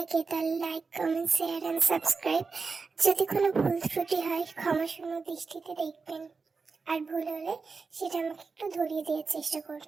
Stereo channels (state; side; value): quieter; left; 4.6 dB